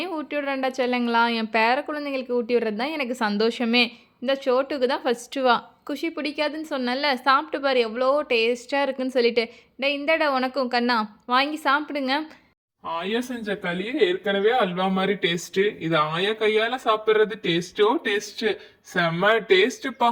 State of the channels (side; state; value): both; identical; correlation 1.00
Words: ஊட்டி விடுறேன்டா செல்லுங்களா. என் பேர குழந்தைங்களுக்கு ஊட்டி விடுறது தான் எனக்கு சந்தோஷமே. இந்த சோட்டுக்கு தான் ஃபஸ்ட்டு வா. குஷி பிடிக்காதுன்னு சொன்னல, சாப்பிட்டு பாரு எவ்வளோ டேஸ்ட்டாக இருக்குன்னு சொல்லிட்டு. இந்தடா உனக்கும் கண்ணா, வாங்கி சாப்பிடுங்க. ஆயா செஞ்ச களியே ஏற்கனவே அல்வா மாதிரி டேஸ்ட். இது ஆயா கையால சாப்பிடுறது டேஸ்டோ டேஸ்ட். செம்ம டேஸ்ட்ப்பா.